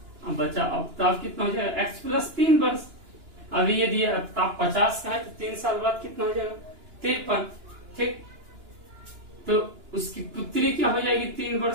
अब बचा आफ्ताब कितना हो जाएगा? x प्लस 3 वर्ष। अभी यदि आफ्ताब 50 का है तो 3 साल बाद कितना हो जाएगा? 53। ठीक, तो उसकी पुत्री क्या हो जाएगी 3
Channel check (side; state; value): left; late; 2.9 ms